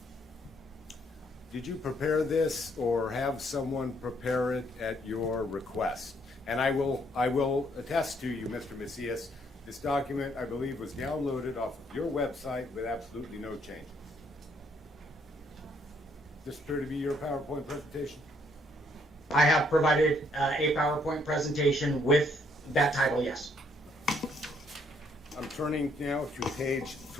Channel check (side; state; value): both; normal; correlation 0.68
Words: prepare this or have someone prepare it at your request? And I will attest to you, Mr. Macias, this document, I believe, was downloaded off of your website with absolutely no changes. Does this appear to be your PowerPoint presentation? I have provided a PowerPoint presentation with that title, yes. I'm turning now to page